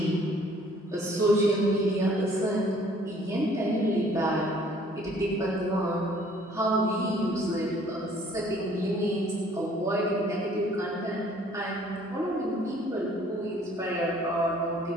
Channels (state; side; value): normal; both; correlation 0.58